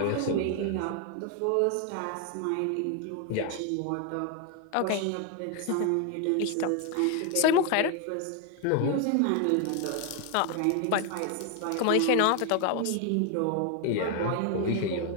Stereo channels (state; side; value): different; both; correlation 0.01